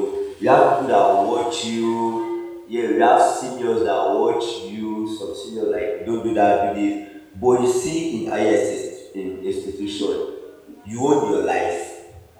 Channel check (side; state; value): both; identical; correlation 1.00